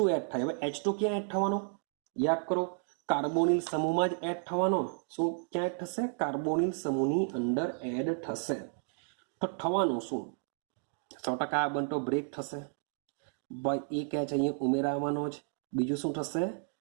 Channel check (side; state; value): left; silent; 56 dB below the other